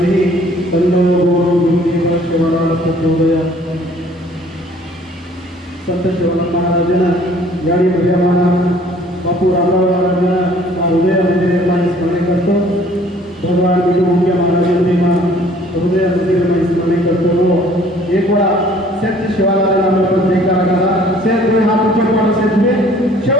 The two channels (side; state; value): both; normal; correlation 0.56